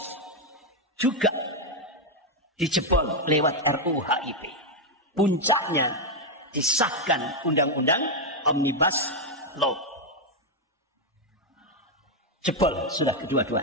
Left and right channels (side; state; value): both; normal; correlation 0.02